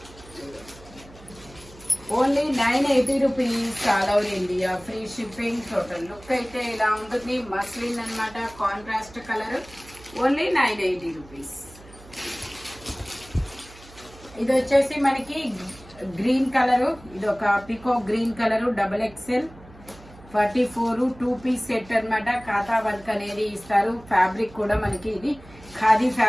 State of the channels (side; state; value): right; noise; hum, 21 dB below the sound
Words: Only 980 rupees, all over India free shipping. Total look అయితే ఇలా ఉంటుంది. మస్లిన్ అన్నమాట, కాంట్రాస్ట్ కలర్. Only 980 rupees. ఇది వచ్చేసి మనకి గ్రీన్ కలరు. ఇది ఒక పికో green colour, XXL 44 2 piece set అన్నమాట. ఖాతా వర్క్ అనేది ఇస్తారు. ఫ్యాబ్రిక్ కూడా మనకి ఇది ఖాదీ